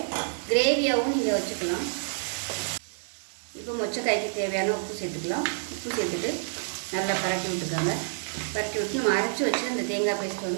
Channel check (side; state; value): left; silent; digital silence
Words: கிரேவியாகவும் நீங்கள் வச்சுக்கலாம். இப்போ மொச்சக்காய்க்கு தேவையான உப்பு சேர்த்துக்கலாம். உப்பு சேர்த்துட்டு நல்லா பரட்டி விட்டுக்காங்க. பரட்டி விட்டு நம்ம அரைச்சி வச்சு அந்த தேங்காய் பேஸ்ட்